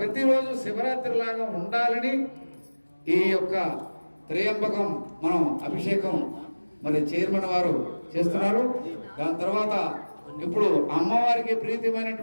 ప్రతిరోజు శివరాత్రి లాగా ఉండాలని ఈ యొక్క త్రయంబకం మనం అభిషేకం మరి చైర్మన్ వారు చేస్తున్నారు. దాని తర్వాత ఇప్పుడు అమ్మవారికి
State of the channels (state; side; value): inverted; both; correlation -1.00